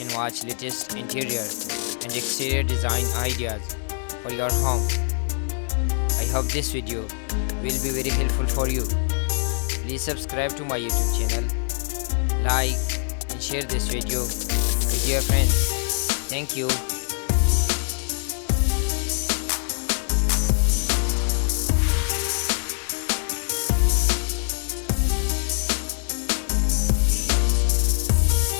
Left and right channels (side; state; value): right; silent; digital silence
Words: watch latest interior and exterior design ideas for your home. I hope this video will be very helpful for you. Please subscribe to my YouTube channel, like and share this video with your friends. Thank you.